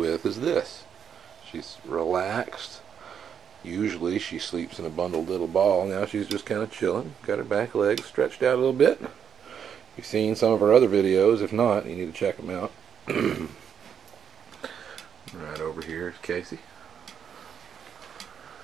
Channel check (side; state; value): left; quieter; 8.0 dB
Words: is this. She's relaxed. Usually she sleeps in a bundled little ball. Now she's just kind of chilling. Got her back legs stretched out a little bit. You've seen some of her other videos. If not, you need to check them out. Right over here is Casey.